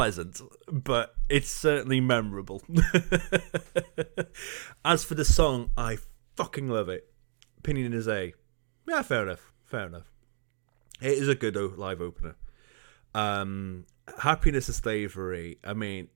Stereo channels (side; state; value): left; silent; digital silence